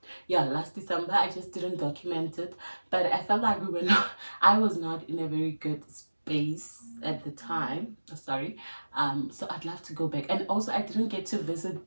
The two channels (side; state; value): both; inverted; correlation -1.00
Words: Yeah, last December. I just didn't document it, but I felt like we were not, I was not in a very good space at the time. Sorry. So I'd love to go back. And also, I didn't get to visit